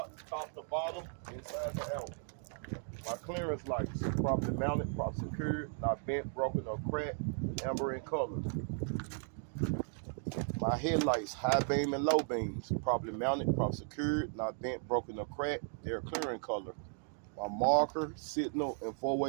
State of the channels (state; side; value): silent; left; 54 dB below the other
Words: top to bottom, inside to out. My clearance lights, properly mounted, properly secured, not bent, broken, or cracked, amber in color. My headlights, high beam and low beams, properly mounted, properly secured, not bent, broken, or cracked, they're clear in color. My marker, signal, and